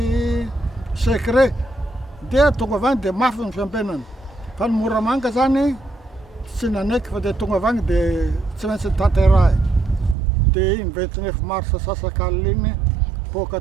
secret dia tonga avy any dia mafy ny fiampenana fa ny Moramanga zany tsy nanaiky fa dia tonga avy any dia tsy maintsy tanterahy dia iny 29 mars sasakalina iny boaka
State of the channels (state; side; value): drops out; left; at 10.2 s